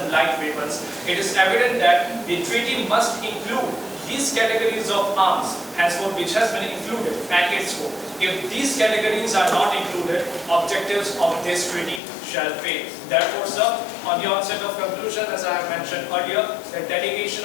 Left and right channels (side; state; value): right; drops out; at 12.0 s